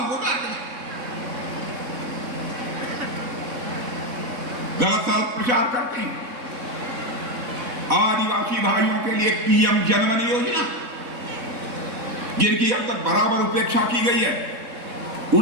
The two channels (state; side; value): late; left; 3.7 ms